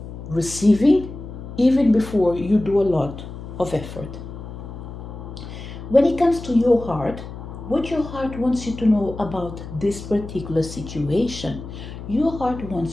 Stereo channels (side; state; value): left; noise; hum, 11 dB below the sound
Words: receiving even before you do a lot of effort. When it comes to your heart, what your heart wants you to know about this particular situation, your heart